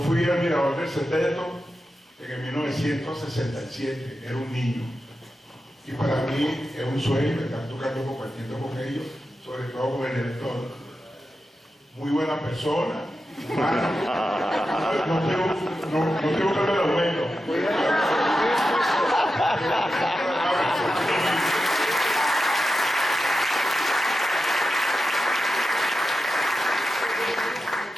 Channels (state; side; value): normal; both; correlation 0.90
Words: fui admirador del Sexteto en 1967, era un niño. Y para mí es un sueño estar tocando, compartiendo con ellos, sobre todo con el director. Muy buena persona, humana. No tengo que hablar de aumento.